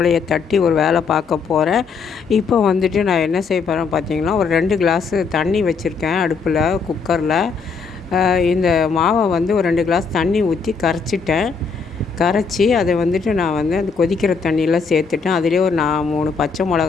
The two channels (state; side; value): quieter; right; 5.2 dB